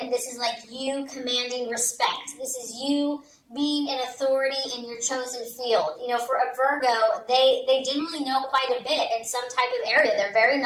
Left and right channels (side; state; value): both; identical; correlation 1.00